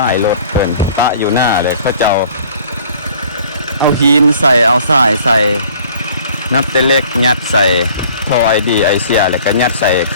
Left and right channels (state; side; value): inverted; both; correlation -0.52